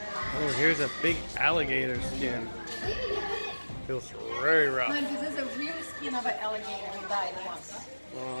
Oh, here's a big alligator skin. Feels very rough. This is a real skin of an alligator who died once.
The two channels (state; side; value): inverted; both; correlation -1.00